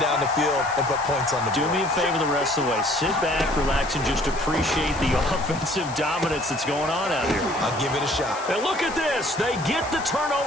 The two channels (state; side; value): noise; left; hiss, 15 dB below the sound